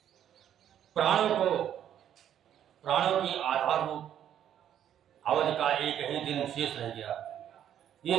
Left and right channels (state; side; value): quieter; left; 10.2 dB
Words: प्राणों की आधार रूप अवध का एक ही दिन शेष रह गया।